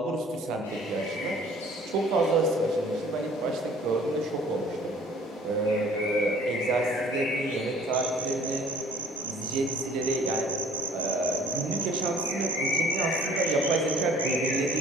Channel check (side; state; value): both; normal; correlation 0.52